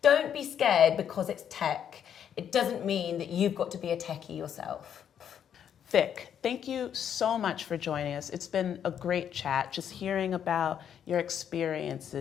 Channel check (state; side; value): quieter; right; 8.9 dB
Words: Don't be scared because it's tech. It doesn't mean that you've got to be a techie yourself. Vic, thank you so much for joining us. It's been a great chat, just hearing about your